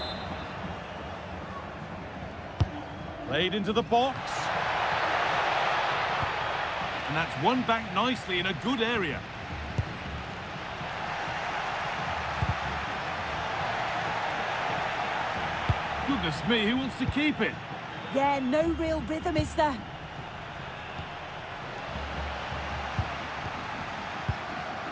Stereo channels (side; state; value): both; identical; correlation 1.00